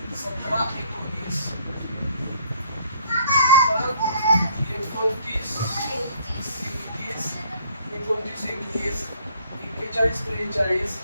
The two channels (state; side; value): inverted; both; correlation -0.61